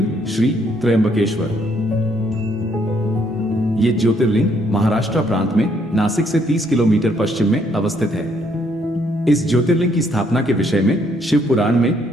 श्री त्र्यंबकेश्वर। ये ज्योतिर्लिंग महाराष्ट्र प्रांत में नासिक से 30 किलोमीटर पश्चिम में अवस्थित है। इस ज्योतिर्लिंग की स्थापना के विषय में शिव पुराण में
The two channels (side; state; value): both; normal; correlation 0.70